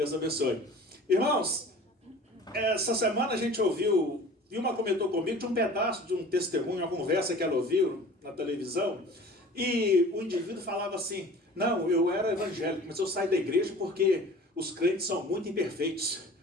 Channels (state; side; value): normal; both; correlation 0.43